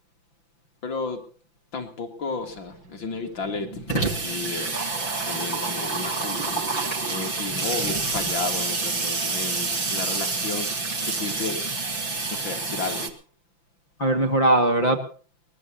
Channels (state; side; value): late; right; 5.9 ms